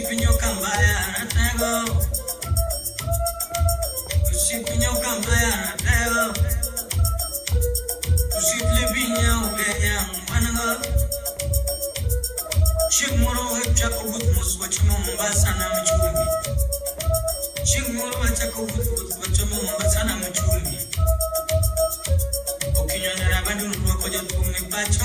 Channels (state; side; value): identical; both; correlation 1.00